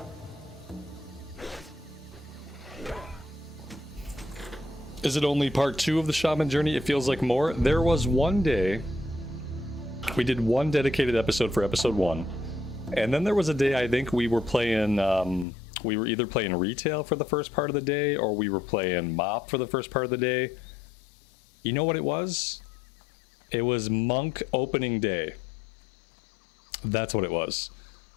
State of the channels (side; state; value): right; drops out; at 15.5 s